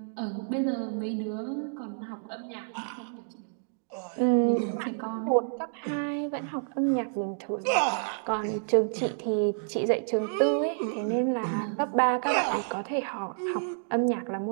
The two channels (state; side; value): silent; left; digital silence